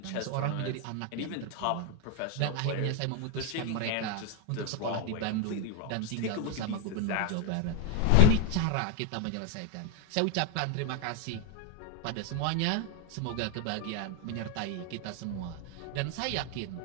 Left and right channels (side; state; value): both; different; correlation 0.00